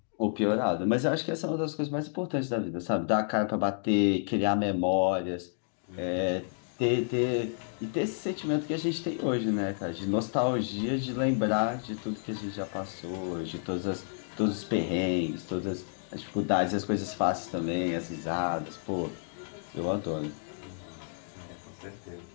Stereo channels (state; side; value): silent; right; digital silence